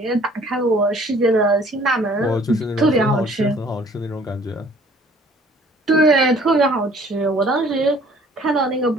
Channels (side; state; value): both; normal; correlation 0.56